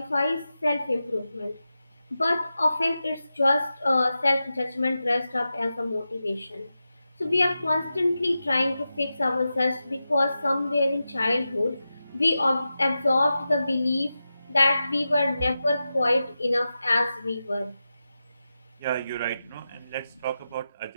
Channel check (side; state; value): both; inverted; correlation -0.92